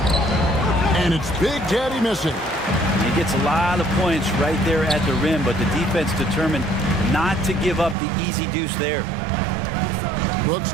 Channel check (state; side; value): drops out; left; at 8.0 s